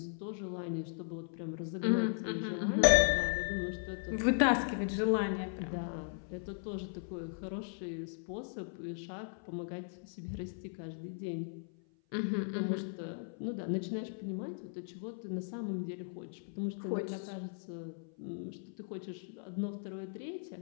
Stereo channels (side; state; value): right; silent; 53 dB below the other